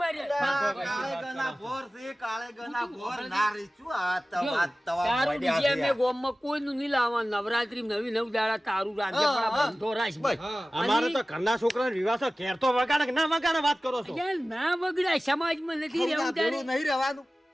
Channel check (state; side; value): normal; both; correlation 0.97